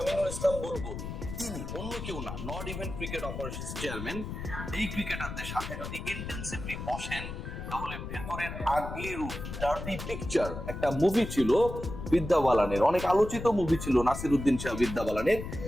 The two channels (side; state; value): left; noise; rumble, 7 dB below the sound